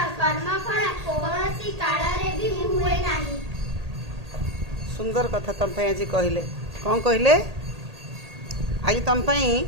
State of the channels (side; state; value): left; late; 1.8 ms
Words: कर्मफल कौनसी कालरे भी हुए नाही। सुंदर कथा तुम आज कहले कौन कहले आज तुम